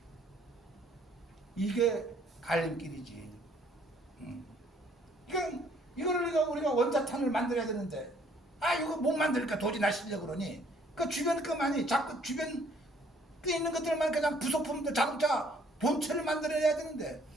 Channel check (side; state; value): both; normal; correlation 0.62